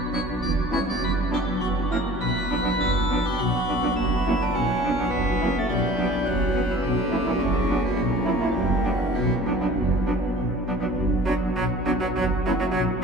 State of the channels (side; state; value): both; normal; correlation 0.46